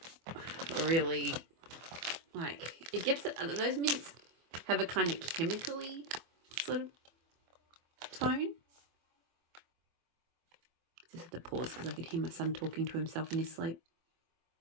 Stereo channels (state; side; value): late; left; 24 ms